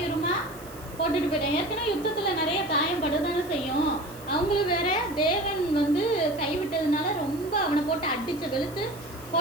போட்டுட்டு போயிட்டாங்க. ஏற்கனவே யுத்தத்தில் நிறைய காயப்படுதானே செய்யும். அவங்களும் வேற தேவன் கைவிட்டதுனால ரொம்ப அவனை போட்டு அடிச்சு வெளுத்து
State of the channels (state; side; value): noise; right; hiss, 20 dB below the sound